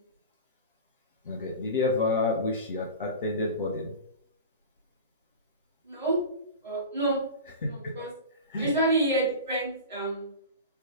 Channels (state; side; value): inverted; both; correlation -0.30